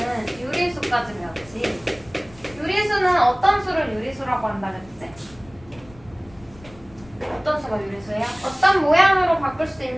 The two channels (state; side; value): noise; left; rumble, 23 dB below the sound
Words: 유리수까지 배웠지. 유리수는 어떤 수를 유리수라고 한다 그랬지? 어떤 수가 유리수예요? 어떤 모양으로 바꿀 수